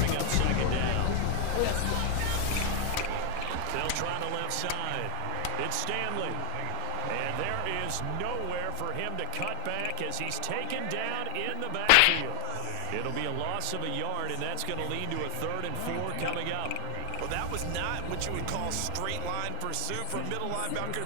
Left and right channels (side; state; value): both; different; correlation 0.00